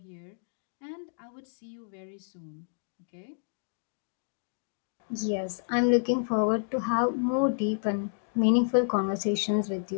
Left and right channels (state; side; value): silent; right; digital silence